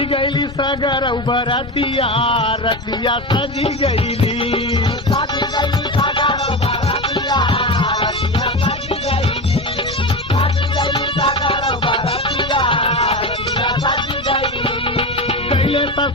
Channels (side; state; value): both; normal; correlation 0.21